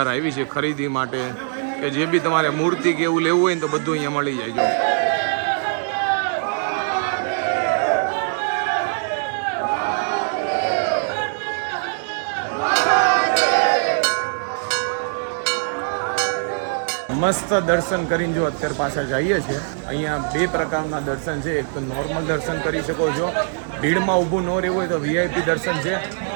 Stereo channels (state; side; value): silent; left; digital silence